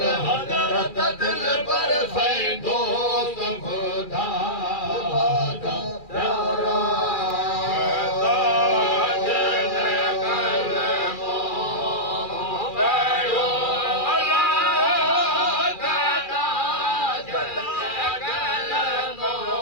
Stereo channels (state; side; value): late; right; 2.4 ms